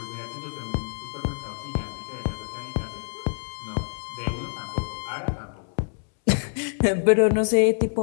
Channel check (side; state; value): right; silent; 61 dB below the other